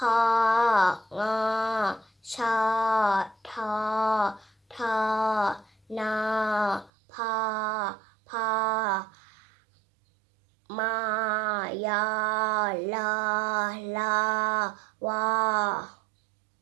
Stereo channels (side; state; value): left; drops out; at 6.9 s